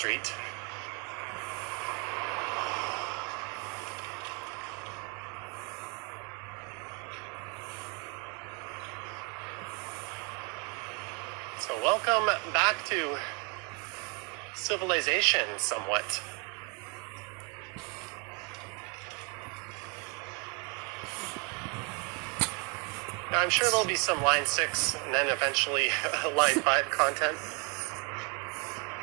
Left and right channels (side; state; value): left; quieter; 31.1 dB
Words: So welcome back to civilization somewhat. Now, I'm sure there'll be some line 6 and then eventually line 5 content.